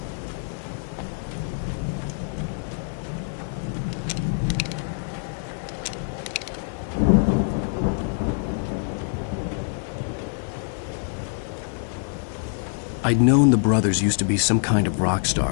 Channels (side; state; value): right; silent; 62 dB below the other